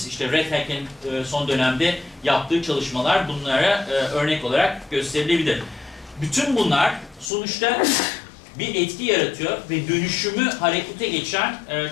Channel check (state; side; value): drops out; right; at 7.3 s